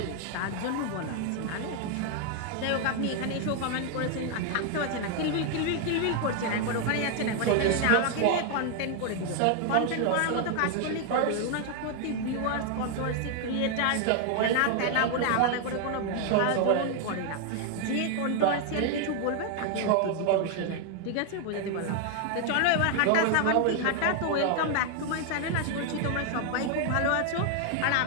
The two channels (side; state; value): both; different; correlation 0.00